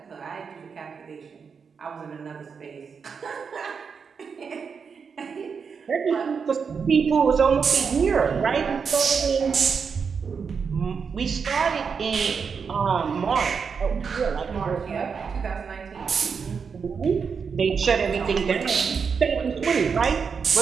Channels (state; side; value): quieter; left; 5.9 dB